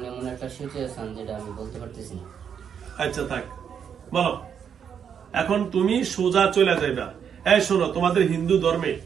এমন একটা সিচুয়েশন যেটা আমি বলতে পারতেছি না। আচ্ছা থাক, বলো এখন তুমি সোজা চলে যাইবা। এই শোনো, তোমাদের হিন্দু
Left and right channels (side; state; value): left; quieter; 7.7 dB